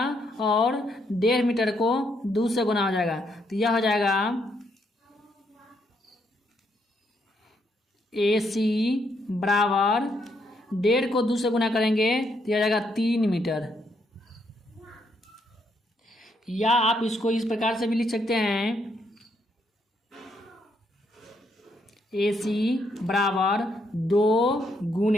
और 1.5 मीटर को 2 से गुना हो जाएगा, तो यह हो जाएगा AC बराबर 1.5 को 2 से गुना करेंगे तो यह हो जाएगा 3 मीटर। या आप इसको इस प्रकार से भी लिख सकते हैं AC बराबर 2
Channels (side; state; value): both; normal; correlation 0.75